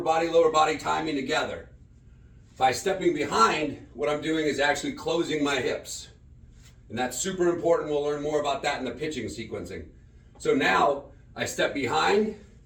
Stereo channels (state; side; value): identical; both; correlation 1.00